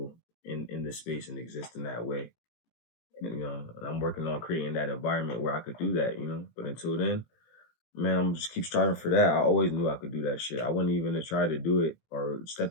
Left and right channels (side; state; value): right; late; 18 ms